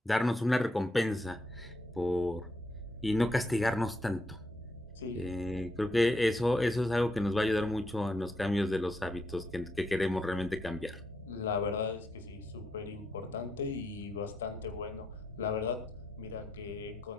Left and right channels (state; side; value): normal; both; correlation 0.79